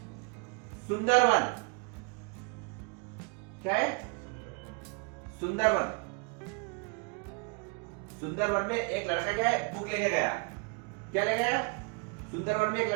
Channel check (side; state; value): left; quieter; 32.5 dB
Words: सुंदरवन, क्या है? सुंदरवन। सुंदरवन में एक लड़का क्या है? बुक लेके गया, क्या ले गया? सुंदरवन में एक